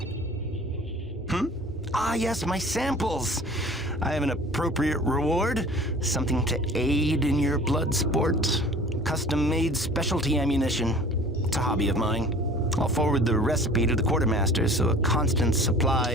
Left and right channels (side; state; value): both; normal; correlation 0.45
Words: Ah, yes, my samples. I have an appropriate reward. Something to aid in your blood sport. Custom-made specialty ammunition. It's a hobby of mine. I'll forward the recipe to the quartermaster so a constant supply